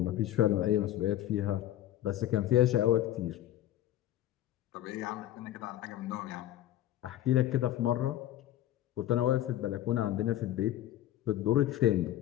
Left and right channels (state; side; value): quieter; right; 13.3 dB